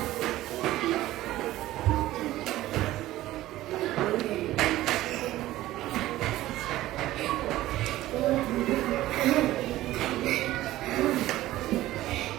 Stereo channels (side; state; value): left; quieter; 15.6 dB